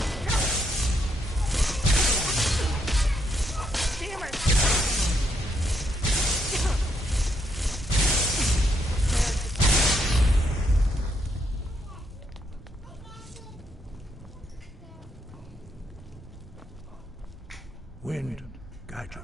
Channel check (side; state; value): both; normal; correlation 0.75